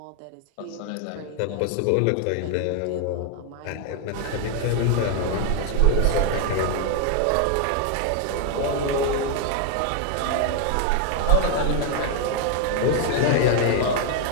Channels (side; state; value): both; different; correlation 0.00